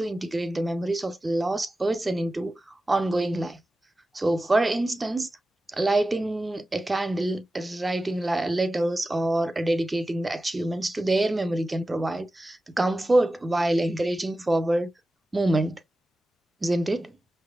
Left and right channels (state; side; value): normal; both; correlation 0.95